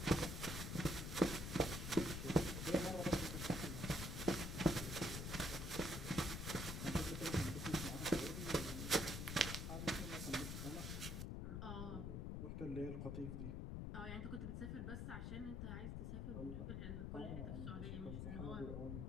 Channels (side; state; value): left; noise; rumble, 3 dB below the sound